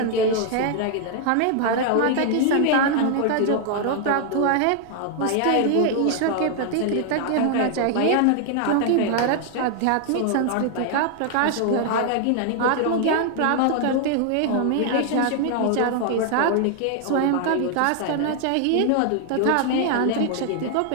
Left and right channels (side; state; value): both; different; correlation 0.00